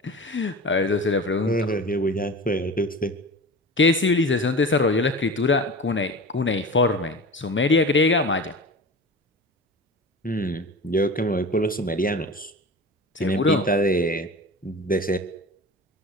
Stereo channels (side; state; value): both; normal; correlation 0.33